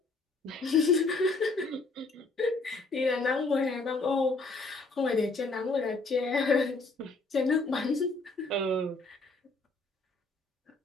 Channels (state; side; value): quieter; right; 3.4 dB